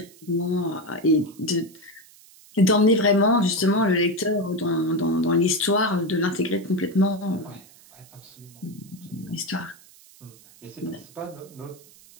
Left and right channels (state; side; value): noise; right; hiss, 24 dB below the sound